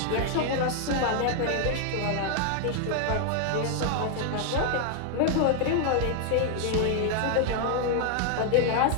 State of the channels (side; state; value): both; different; correlation 0.00